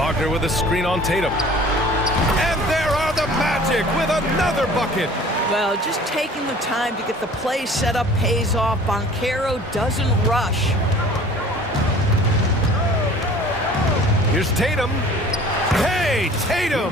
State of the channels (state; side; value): normal; both; correlation 0.48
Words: with a screen on Tatum. And there are the Magic with another bucket. Well, just taking the time to get the play set up pays off. Banchero doesn't rush. Here's Tatum. Hey,